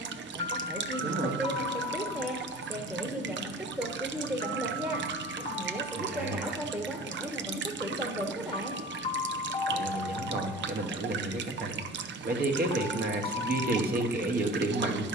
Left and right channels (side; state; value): both; normal; correlation 0.40